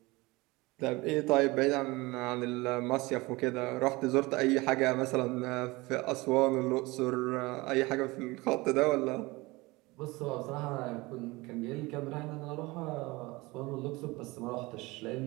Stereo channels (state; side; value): quieter; left; 22.6 dB